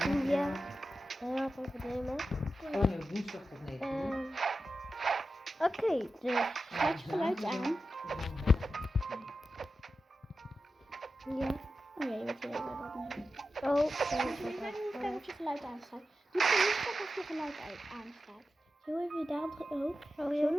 Ja, heel veel problemen. Oh nee, woensdag tot 9 uur. Oké, dus Zet je geluid aan. ja. Oh ja, je weet wel wat nu. Oh, Kijk of je geluid aanstaat. Doe je niet of je geluid aanstaat. Zo even daar op. Oh, zo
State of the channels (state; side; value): normal; both; correlation 0.92